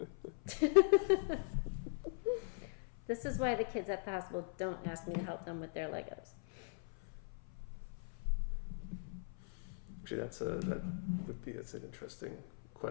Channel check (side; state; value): right; silent; 51 dB below the other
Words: This is why the kids at the hospital don't ask me to help them with their Legos. Actually, that's an interesting